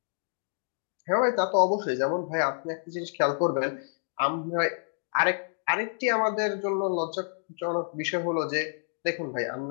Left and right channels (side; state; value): right; silent; digital silence